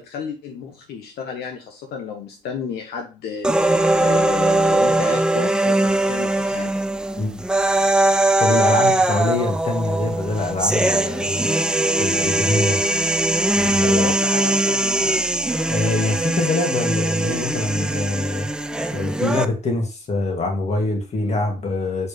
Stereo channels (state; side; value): normal; both; correlation 0.71